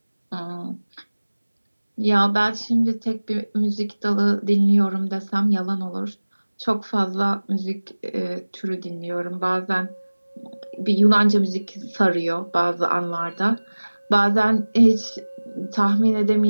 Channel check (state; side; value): inverted; both; correlation -1.00